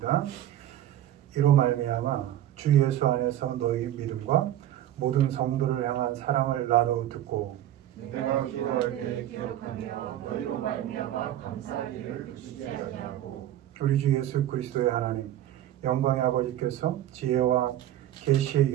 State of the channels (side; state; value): left; quieter; 12.5 dB